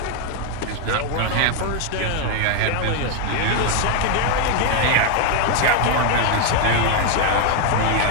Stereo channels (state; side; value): different; both; correlation 0.01